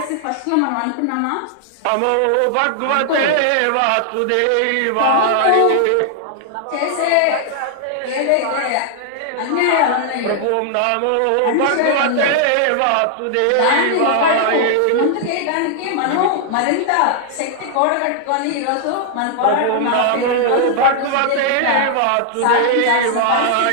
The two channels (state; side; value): different; both; correlation 0.00